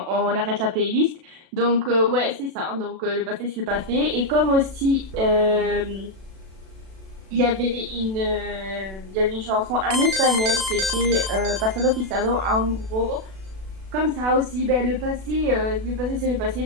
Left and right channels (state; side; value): late; left; 36 ms